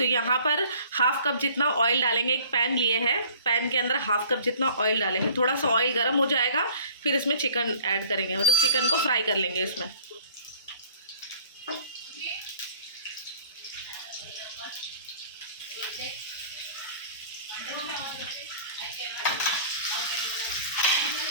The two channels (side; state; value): both; inverted; correlation -0.51